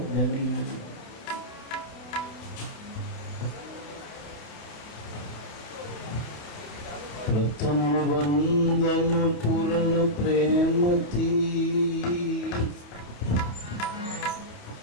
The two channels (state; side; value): late; right; 29 ms